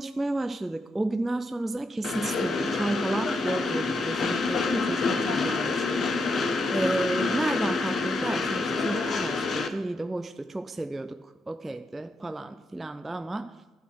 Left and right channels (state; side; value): normal; both; correlation 0.83